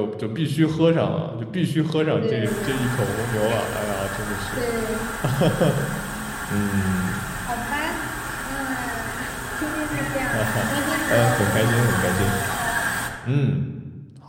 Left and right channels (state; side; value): identical; both; correlation 1.00